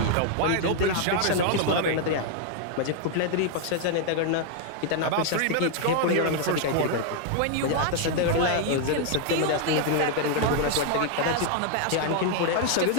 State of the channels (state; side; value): different; both; correlation 0.00